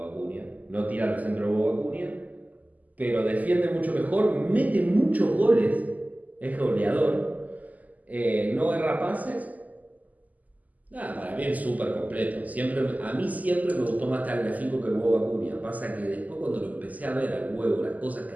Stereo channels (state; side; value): late; left; 0.078 ms